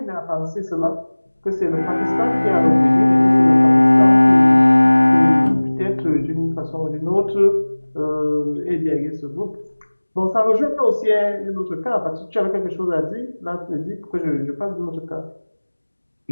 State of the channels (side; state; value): both; inverted; correlation -1.00